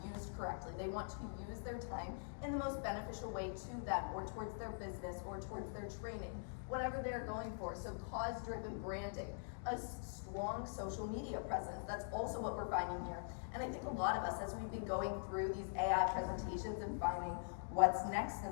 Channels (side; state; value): right; silent; digital silence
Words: used correctly. They want to use their time in the most beneficial way to them, or towards their business, or towards their training, whatever they're going for. So cause-driven branding, a strong social media presence. That's also what we're finding here. And I think a lot of us, as we've been going through these AI presentations and finding what's next in